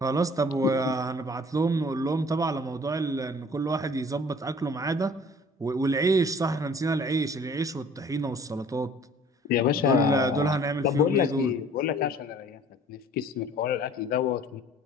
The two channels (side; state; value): both; normal; correlation 0.51